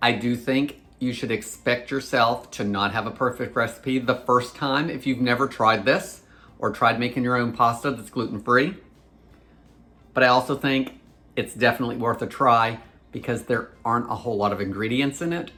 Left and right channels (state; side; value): identical; both; correlation 1.00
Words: I do think you should expect yourself to not have a perfect recipe the first time if you've never tried this or tried making your own pasta that's gluten-free. But I also think it's definitely worth a try because there aren't a whole lot of ingredients in it